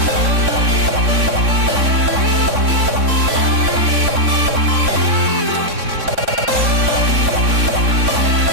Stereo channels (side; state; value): left; late; 3.6 ms